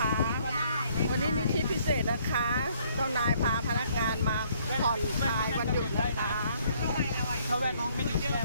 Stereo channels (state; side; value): inverted; both; correlation -0.64